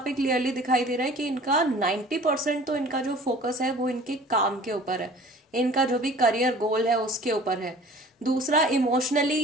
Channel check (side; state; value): both; normal; correlation 0.47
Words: पे क्लियरली दिखाई दे रहा है कि इनका 90% तो इनका जो फोकस है वो इनके काम के ऊपर है, इनका जो भी करियर गोल है उसके ऊपर है। दूसरा, इमोशनली